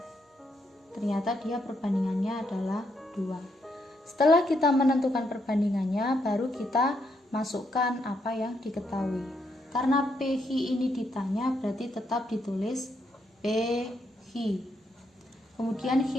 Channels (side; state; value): both; normal; correlation 0.77